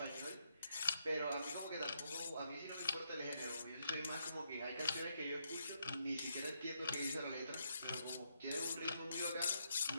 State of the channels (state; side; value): inverted; both; correlation -0.77